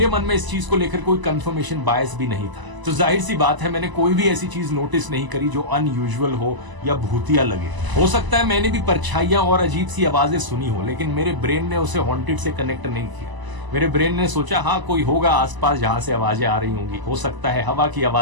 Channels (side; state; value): left; late; 1.0 ms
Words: मन में इस चीज को लेकर कोई कंफर्मेशन बायस भी नहीं था। तो जाहिर सी बात है, मैंने कोई भी ऐसी चीज नोटिस नहीं करी जो अनयूजुअल हो या भूतिया लगे। हो सकता है मैंने भी परछाइयां और अजीब सी आवाजें सुनी हो, लेकिन मेरे ब्रेन ने उसे हॉन्टेड से कनेक्ट नहीं किया। मेरे ब्रेन ने सोचा हाँ कोई होगा आसपास जहां से आवाजें आ रही होंगी, हो सकता है हवा की